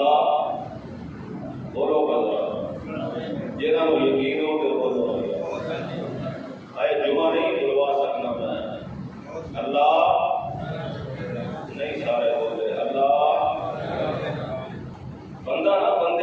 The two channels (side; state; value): both; identical; correlation 1.00